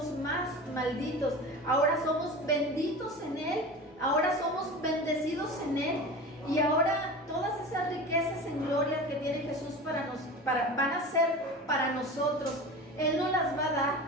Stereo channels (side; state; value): both; normal; correlation 0.32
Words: más malditos, ahora somos benditos en Él, ahora somos bendecidos en Él, y ahora todas esas riquezas en gloria que tiene Jesús van a ser para nosotros. Él nos las va a dar,